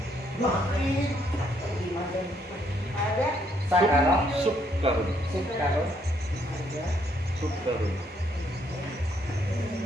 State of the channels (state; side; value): normal; both; correlation 0.70